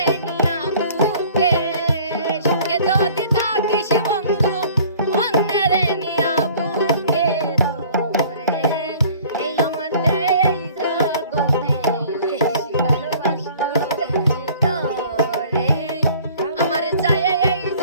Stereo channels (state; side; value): inverted; both; correlation -0.51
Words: নিয়া বুকে সুখে যদি থাকিস বন্ধু অন্যের নিয়া বুকে রে এই আমার এই জগতে বেশি ভালোবাসতো তোরে আমার চাই এই